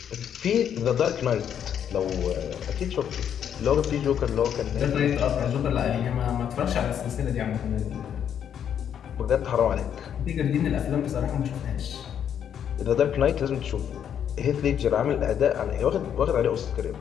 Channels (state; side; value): quieter; right; 8.9 dB